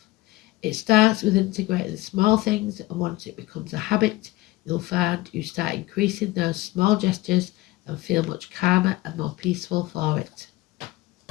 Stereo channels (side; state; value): right; quieter; 18.7 dB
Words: It starts with integrating the small things, and once it becomes a habit, you'll find you start increasing those small gestures and feel much calmer and more peaceful for it.